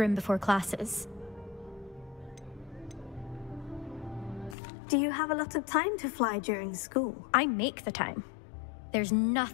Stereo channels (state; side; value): drops out; right; at 4.5 s